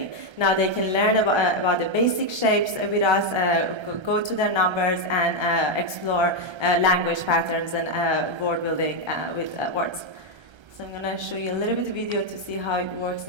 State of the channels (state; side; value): late; left; 1.3 ms